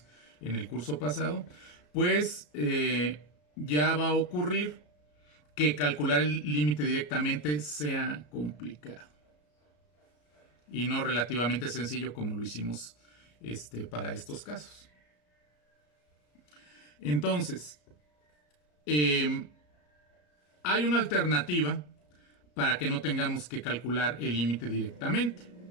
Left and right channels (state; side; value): late; right; 34 ms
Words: en el curso pasado, pues ya va a ocurrir que calcular el límite directamente sea complicado y no relativamente sencillo como lo hicimos para estos casos. Entonces, hay una alternativa para que no tengamos que calcular el límite directamente.